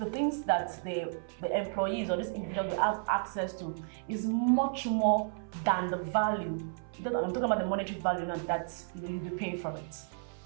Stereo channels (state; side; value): silent; left; 55 dB below the other